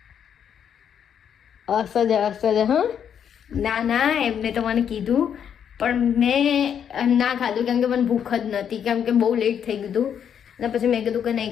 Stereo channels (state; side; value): quieter; right; 8.4 dB